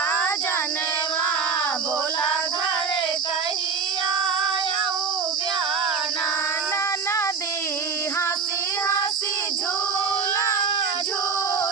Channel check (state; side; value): quieter; left; 5.6 dB